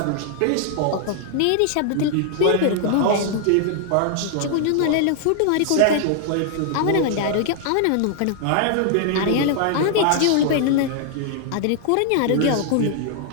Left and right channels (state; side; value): different; both; correlation 0.00